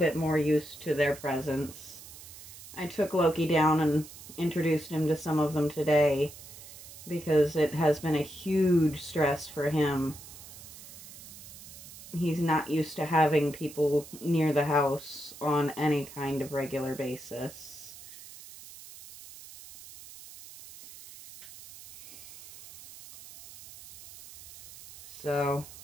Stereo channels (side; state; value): right; noise; hiss, 16 dB below the sound